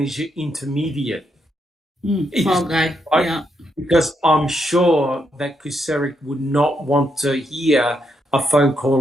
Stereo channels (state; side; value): normal; both; correlation 0.80